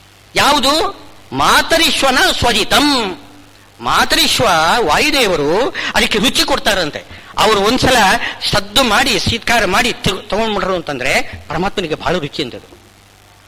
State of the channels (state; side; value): identical; both; correlation 1.00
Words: ಯಾವುದು? ಮಾತರಿಶ್ವನ ಸ್ವಜಿತಂ. ಮಾತರಿಶ್ವ ವಾಯುದೇವರು ಅದಕ್ಕೆ ರುಚಿ ಕೊಡ್ತಾರಂತೆ. ಅವರು ಒಂದ್ಸಲ ಸದ್ದು ಮಾಡಿ ಶೀತ್ಕಾರ ಮಾಡಿ ತಗೊಂಡ್ಬಿಟ್ರು ಅಂತಂದ್ರೆ ಪರಮಾತ್ಮನಿಗೆ ಬಹಳ ರುಚಿ ಅಂತದ್ದು